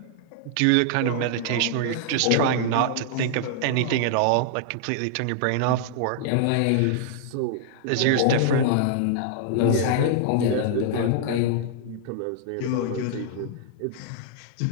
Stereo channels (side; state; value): both; different; correlation -0.01